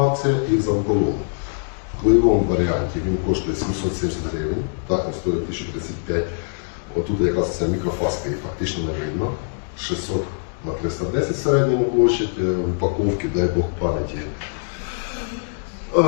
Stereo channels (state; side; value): silent; right; digital silence